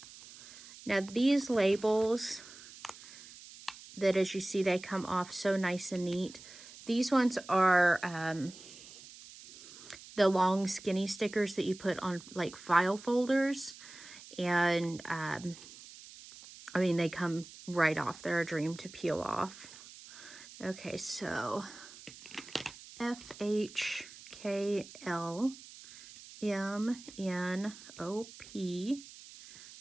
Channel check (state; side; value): noise; right; hiss, 17 dB below the sound